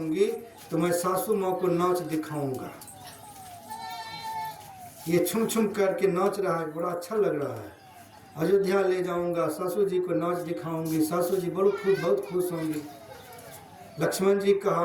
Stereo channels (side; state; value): both; identical; correlation 1.00